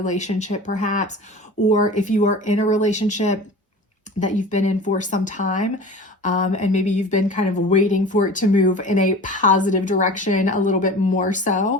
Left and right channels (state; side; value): normal; both; correlation 0.37